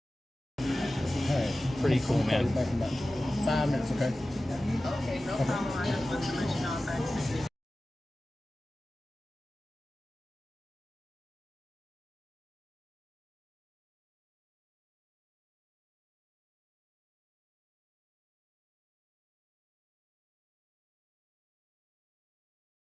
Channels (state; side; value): normal; both; correlation 0.95